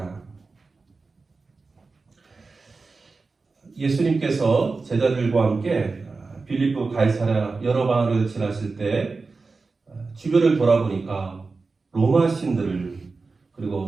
예수님께서 제자들과 함께 빌립보 가이사랴 여러 방을 지나실 때 주변을 돌아보니까 로마 신들을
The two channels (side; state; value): left; quieter; 4.1 dB